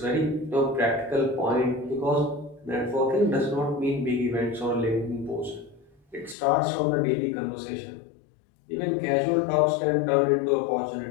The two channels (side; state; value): right; drops out; at 6.4 s